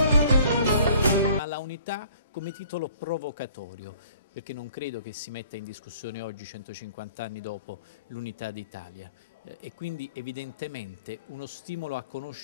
come titolo provocatorio, perché non credo che si metta in discussione oggi, 150 anni dopo, l'unità d'Italia. E quindi evidentemente uno stimolo a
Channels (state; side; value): inverted; both; correlation -0.54